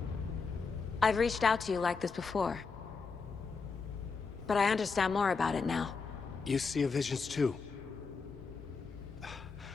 I've reached out to you like this before. But I understand more about it now. You see visions too.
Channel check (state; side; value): quieter; right; 4.9 dB